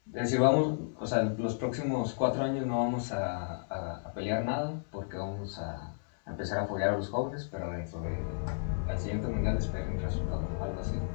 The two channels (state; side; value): silent; right; 56 dB below the other